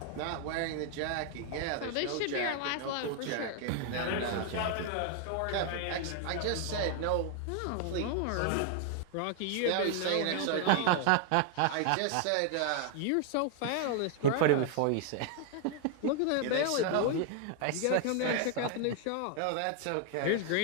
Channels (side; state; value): both; different; correlation 0.00